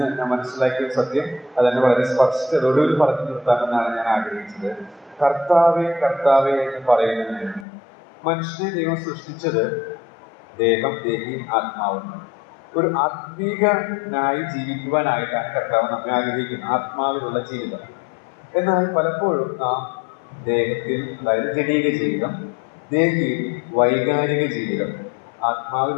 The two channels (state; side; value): drops out; right; at 7.7 s